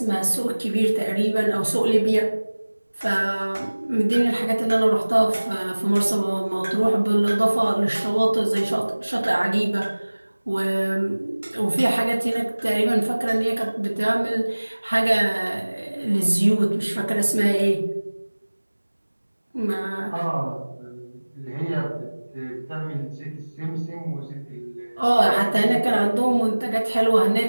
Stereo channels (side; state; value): both; inverted; correlation -1.00